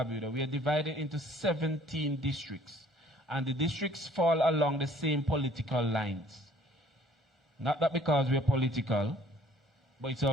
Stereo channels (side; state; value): both; normal; correlation 0.57